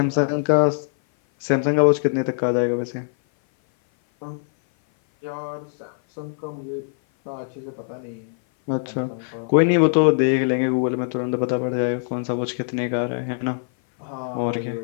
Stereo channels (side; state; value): right; silent; 57 dB below the other